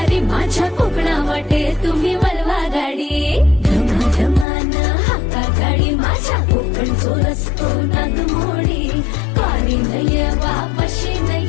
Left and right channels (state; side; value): drops out; right; at 4.5 s